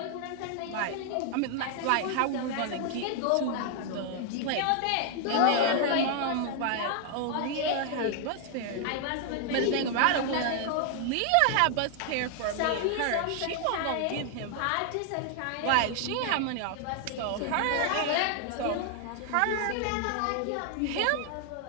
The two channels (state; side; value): different; both; correlation 0.00